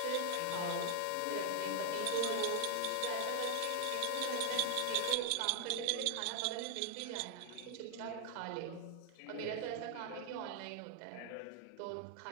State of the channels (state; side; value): different; both; correlation 0.00